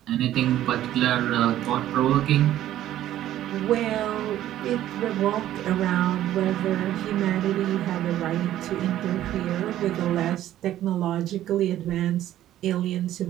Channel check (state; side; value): quieter; left; 12.9 dB